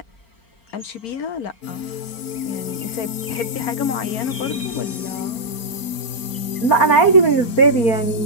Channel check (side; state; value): right; late; 4.4 ms